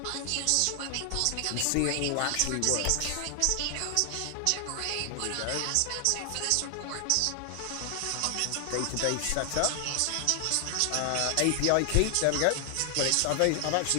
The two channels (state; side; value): different; both; correlation 0.00